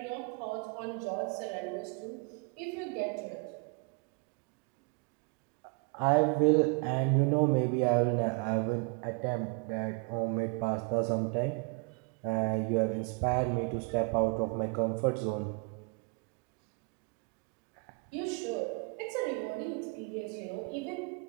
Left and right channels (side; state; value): left; quieter; 34.2 dB